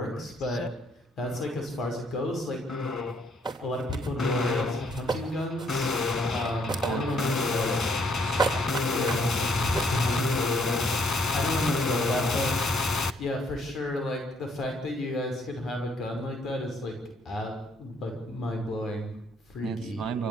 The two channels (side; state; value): both; normal; correlation 0.68